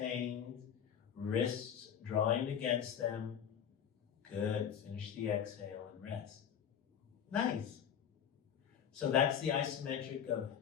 Wrists drawing against them. Good. Finish the exhale and rest. Nice. So that's the isometric of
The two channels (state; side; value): quieter; right; 8.5 dB